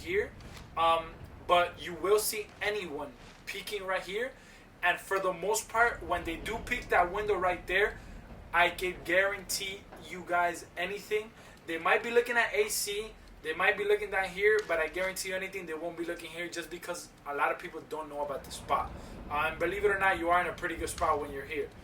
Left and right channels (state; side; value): identical; both; correlation 1.00